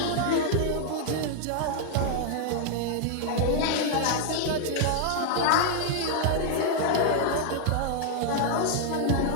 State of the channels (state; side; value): different; both; correlation 0.00